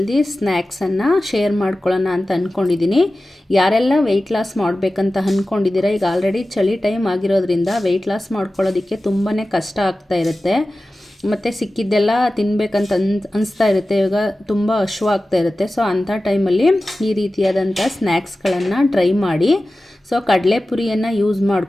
ಸ್ನ್ಯಾಕ್ಸನ್ನು ಶೇರ್ ಮಾಡ್ಕೊಳ್ಳೋಣ ಅಂತ ಅಂದ್ಕೊಂಡಿದ್ದೀನಿ. ಯಾರೆಲ್ಲ ವೆಯ್ಟ್ ಲಾಸ್ ಮಾಡಬೇಕಂತ ಅಂದ್ಕೊಂಡಿದ್ದೀರಾ, ಈಗ ಆಲ್ರೆಡಿ ಚಳಿ ಟೈಮ್ ಆಗಿರೋದ್ರಿಂದ ವೆಯ್ಟ್ ಲಾಸ್ ಮಾಡ್ಕೊಳ್ಳೋದಕ್ಕೆ ತುಂಬಾ ಕಷ್ಟ ಆಗ್ತಾ ಇರುತ್ತೆ. ಮತ್ತು ಸಿಕ್ಕಿದ್ದೆಲ್ಲ ತಿನ್ನಬೇಕಂತ ಅನಿಸ್ತಾ ಇರುತ್ತೆ. ಇವಾಗ ತುಂಬ ಹಶ್ವಾಗ್ತಾ ಇರುತ್ತೆ. ಸೊ ಅಂಥ ಟೈಮಲ್ಲಿ ಈ ರೀತಿಯಾದಂಥ ಸ್ನ್ಯಾಕ್ಸ್ಗಳನ್ನು ಟ್ರೈ ಮಾಡಿ. ಸೊ ಕಡಲೆಪುರಿಯನ್ನು ಯೂಸ್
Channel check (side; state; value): both; normal; correlation 0.95